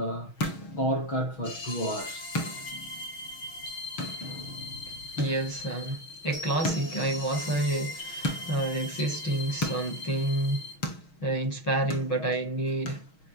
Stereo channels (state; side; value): late; right; 6.3 ms